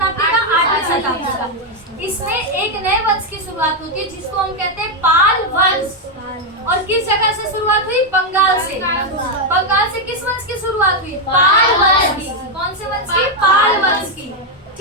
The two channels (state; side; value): normal; both; correlation 0.03